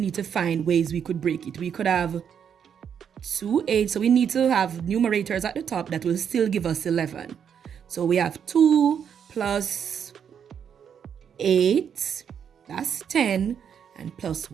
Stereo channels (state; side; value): quieter; left; 7.9 dB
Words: need to find ways we could break it. We could have 2 8, so we need to have numerators at the top that will still give us 11. So we have 2 plus 8, that's 10, and plus